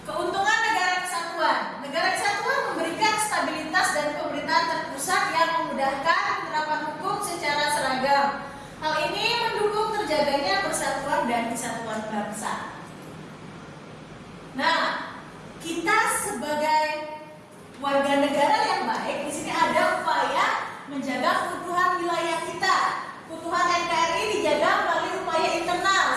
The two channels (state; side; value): identical; both; correlation 1.00